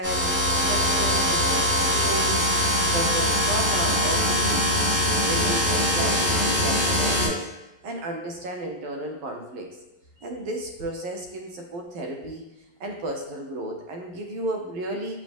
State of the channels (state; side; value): late; left; 11 ms